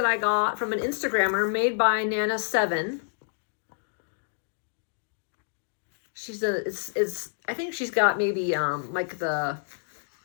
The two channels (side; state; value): right; silent; digital silence